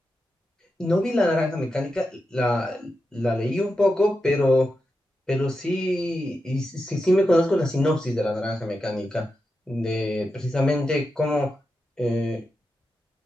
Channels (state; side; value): normal; both; correlation 0.89